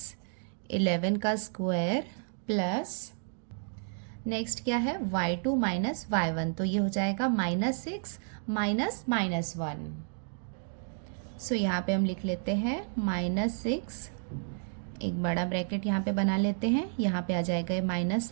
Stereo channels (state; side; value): silent; left; digital silence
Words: 11 का स्क्वायर प्लस नेक्स्ट क्या है y2 - y1, तो ये हो जाएगा -6 -1। सो यहाँ पे हम लिख लेते हैं -6, एक बड़ा ब्रैकेट यहाँ पे बना लेते हैं, यहाँ पे आ जाएगा ये माइनस